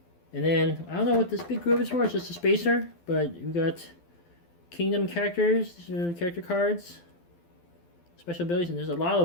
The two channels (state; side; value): late; right; 12 ms